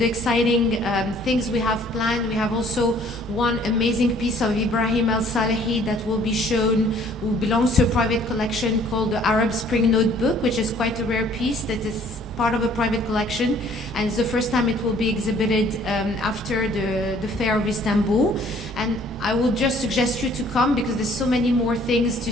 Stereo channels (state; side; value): normal; both; correlation 0.57